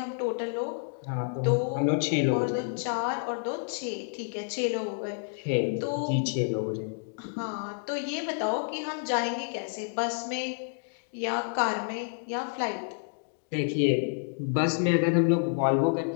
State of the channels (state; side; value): silent; right; digital silence